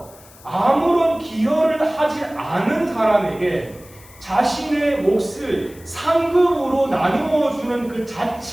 아무런 기여를 하지 않은 사람에게 자신의 몫을 상급으로 나누어 주는 그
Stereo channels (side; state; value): left; noise; hiss, 23 dB below the sound